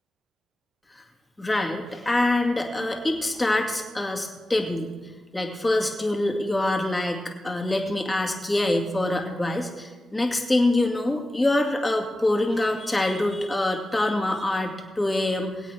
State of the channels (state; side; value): normal; both; correlation 0.94